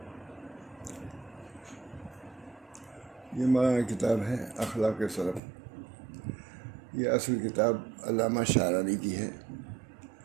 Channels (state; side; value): drops out; left; at 5.4 s